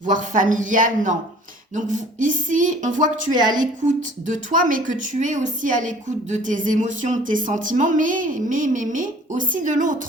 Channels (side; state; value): both; normal; correlation 0.50